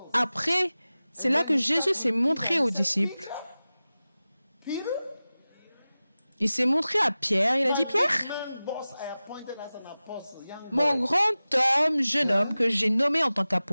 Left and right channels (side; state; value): both; inverted; correlation -0.96